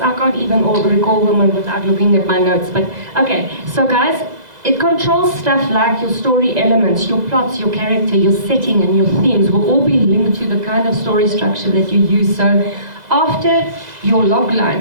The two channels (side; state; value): left; late; 2.0 ms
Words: I can't even recall them without looking at my notes. But okay, so guys, it controls stuff like your story elements, your plots, your character, your setting, and your themes will all be linked to the kind of story structure that you use. So after your